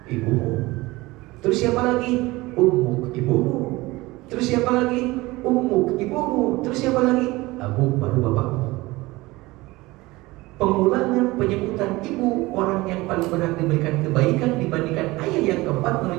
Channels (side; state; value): left; quieter; 20.7 dB